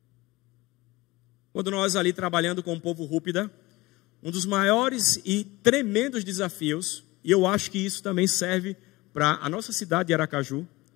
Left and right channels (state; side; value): quieter; right; 21.0 dB